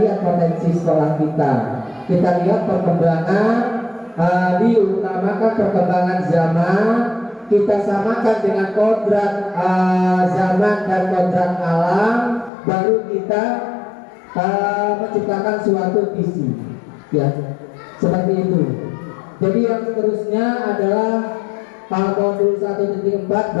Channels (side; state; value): right; drops out; at 12.5 s